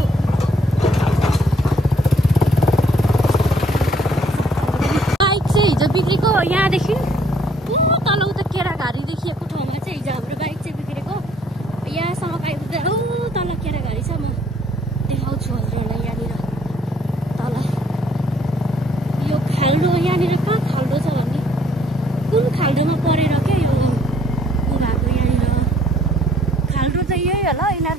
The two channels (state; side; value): normal; both; correlation 0.64